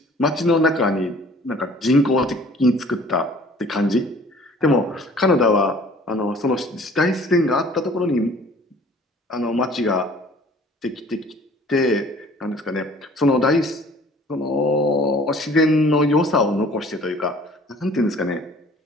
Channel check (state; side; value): normal; both; correlation 0.52